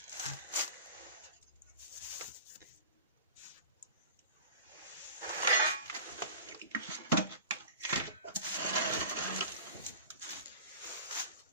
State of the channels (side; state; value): both; inverted; correlation -0.36